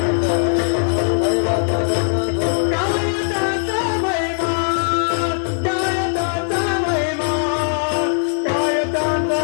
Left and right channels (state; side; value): silent; right; digital silence